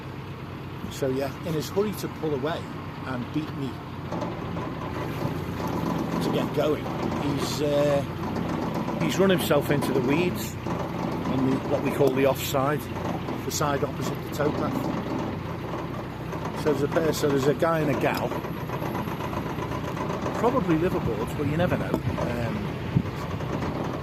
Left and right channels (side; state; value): both; identical; correlation 1.00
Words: So yeah, in his hurry to pull away and beat me to get going, he's run himself into the weeds on what we call the offside, the side opposite the towpath. So there's a guy and a gal, probably liveaboards, but you never know.